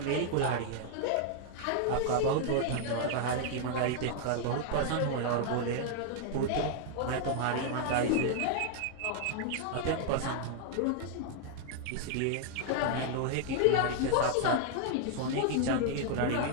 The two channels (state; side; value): different; both; correlation 0.00